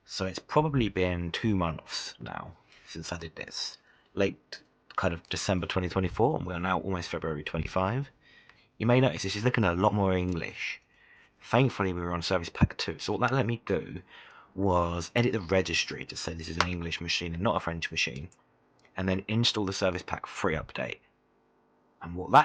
So it's probably been 2 months now since I did this. Late kind of December 2024, and we're now almost February 25. You may notice this is looking a lot more English. Thankfully we were on Service Pack 2, so what that let me do was edit the registry to say this is an English machine and not a French machine, and then install the Service Pack 3 update. And what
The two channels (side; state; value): both; identical; correlation 1.00